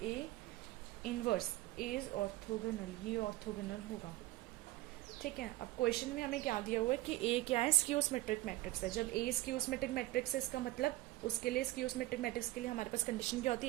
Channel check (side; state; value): left; quieter; 17.7 dB